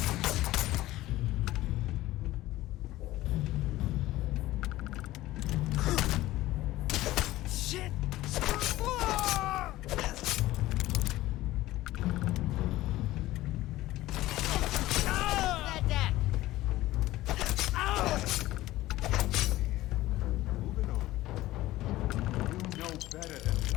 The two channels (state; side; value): quieter; right; 16.5 dB